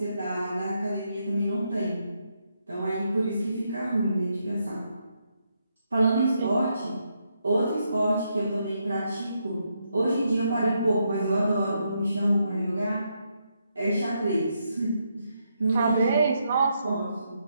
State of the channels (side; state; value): both; inverted; correlation -0.80